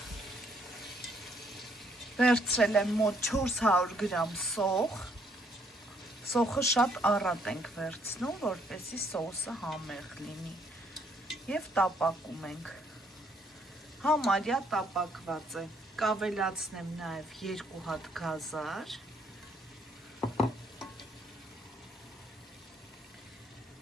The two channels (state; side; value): normal; both; correlation 0.68